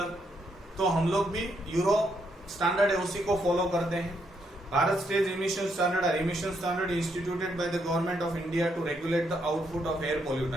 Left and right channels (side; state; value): both; normal; correlation 0.76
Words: तो हम लोग भी यूरो स्टैंडर्ड है उसी को फॉलो करते हैं। Bharat stage emission standard are emission standard instituted by the government of India to regulate the output of air